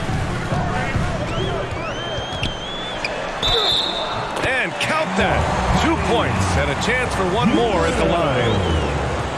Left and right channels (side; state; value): both; identical; correlation 1.00